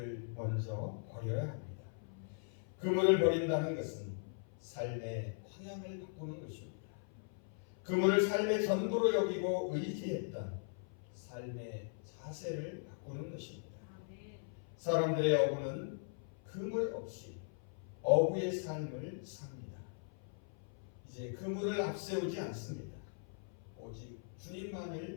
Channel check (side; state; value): right; silent; 52 dB below the other